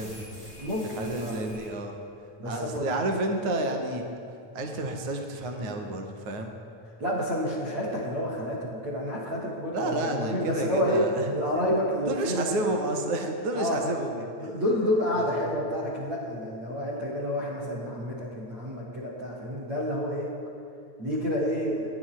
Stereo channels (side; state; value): left; late; 9.4 ms